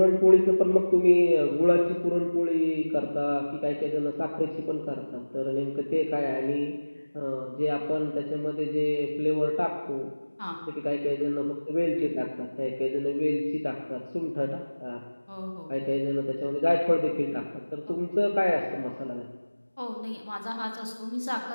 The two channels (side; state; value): both; inverted; correlation -1.00